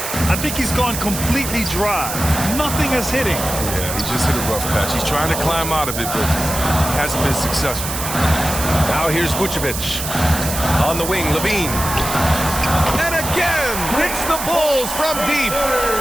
I think he's gone completely dry. Nothing is hitting. Yeah, he just hit a rough patch. He's trying to climb out of it, but hasn't been successful. Now here's Vucevic. On the wing, Levine. And again, hits the Bulls from deep.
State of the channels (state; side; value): noise; right; hiss, 5 dB below the sound